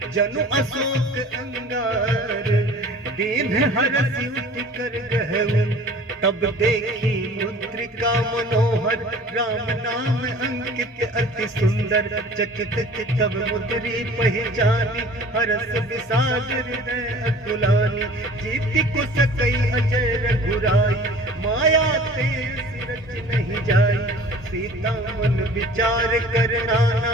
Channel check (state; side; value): normal; both; correlation 0.46